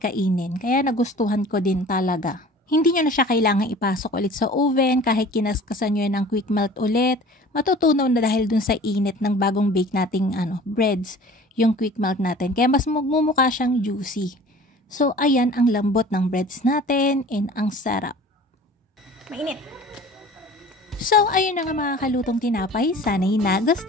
Kaya nagustuhan ko din talaga. Hindi nyo na siya kailangan ipasok ulit sa oven kahit kinaskasan nyo yan ng quick melt ulit. Matutunaw na dahil dun sa init ng bagong bake nating breads, yung quick melt natin. Kaya mas magmumukha siyang juicy. So ayan ang lambot ng breads natin and ang sarap. Mainit. So, ayun na nga mga kalutong tinapay. Sana'y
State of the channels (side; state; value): both; normal; correlation 0.45